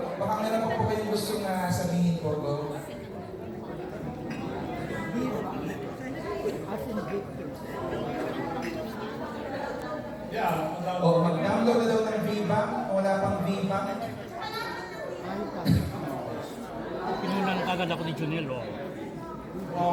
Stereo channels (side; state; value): both; identical; correlation 1.00